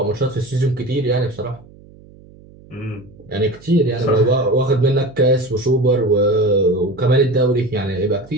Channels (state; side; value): noise; right; hum, 23 dB below the sound